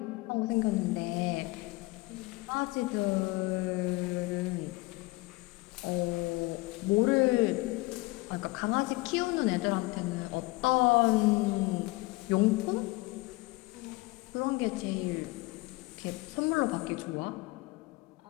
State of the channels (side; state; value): right; quieter; 22.9 dB